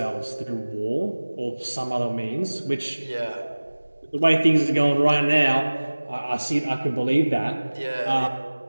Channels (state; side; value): inverted; both; correlation -1.00